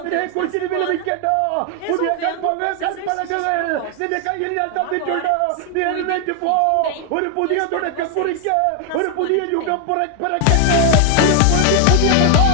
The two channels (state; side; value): different; both; correlation 0.00